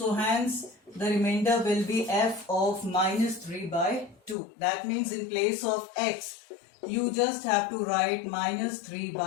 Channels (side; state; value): right; drops out; at 4.4 s